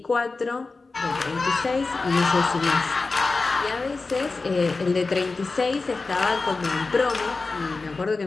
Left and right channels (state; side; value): quieter; right; 3.8 dB